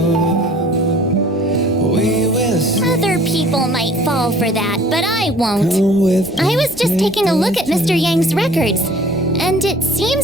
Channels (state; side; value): normal; both; correlation 0.52